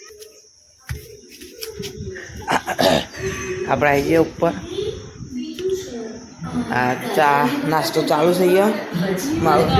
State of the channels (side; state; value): both; identical; correlation 1.00